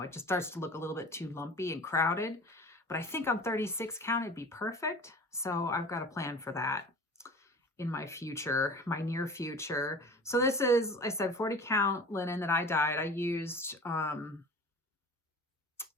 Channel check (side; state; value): both; normal; correlation 0.40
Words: it just starts to look a little bit too lumpy and crowded. But I think on 36 count, it'd be perfect. So I've got a plan for that in my future, my near future. So this is, I said, 40 count linen that I dyed. I used